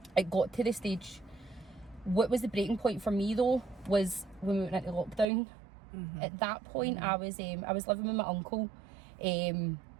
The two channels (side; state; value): left; drops out; at 5.2 s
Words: It got to the stage. What was the breaking point for me though was when we went into lockdown. At that point, I was living with my uncle, and